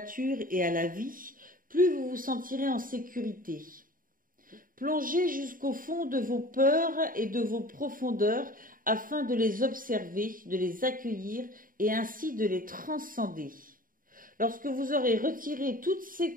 et à la vie, plus vous vous sentirez en sécurité. Plongez jusqu'au fond de vos peurs et de vos profondeurs afin de les observer, de les accueillir et ainsi de les transcender. Lorsque vous aurez retiré toutes ces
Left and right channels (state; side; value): late; left; 0.40 ms